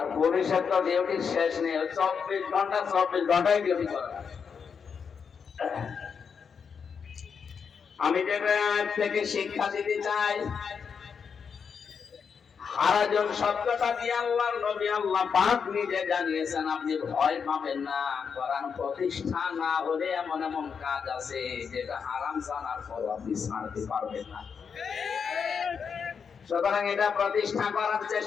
পুলিশের তো ডিউটির শেষ নেই, 24 ঘন্টায় ডিউটি করা। আমি যেটা থেকে শিক্ষা দিতে চাই, হারাজন শব্দটা দিয়ে আল্লাহর নবী আল্লাহ পাক নিজে জানিয়েছেন আপনি ভয় পাবেন না। কোরআন প্রতিষ্ঠা না হলে এমন এমন কাজ আছে যেটা হারাম জানার পর আপনি ছাড়তে পারবেন না। সুতরাং এটা প্রতিষ্ঠা করার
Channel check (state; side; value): quieter; right; 6.3 dB